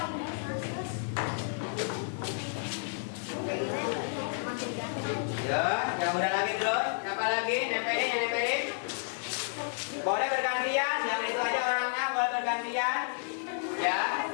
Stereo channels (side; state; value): right; silent; digital silence